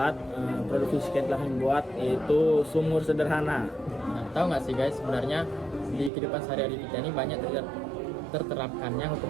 produk fisika yang telah kami buat, yaitu sumur sederhana. Nah, tahu nggak sih guys, sebenarnya di kehidupan sehari-hari kita ini banyak terterapkannya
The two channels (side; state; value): left; drops out; at 6.1 s